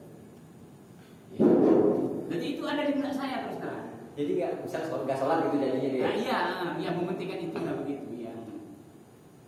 Jadi itu ada di benak saya terus terang. Jadi nggak sholat gitu jadinya dia. Nah, iya, mementingkan itu lah begitu ya.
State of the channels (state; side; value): identical; both; correlation 1.00